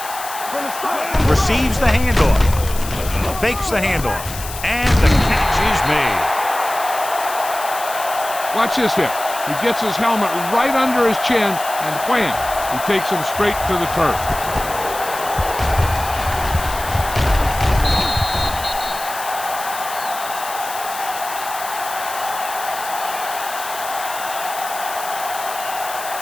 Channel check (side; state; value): left; noise; hiss, 10 dB below the sound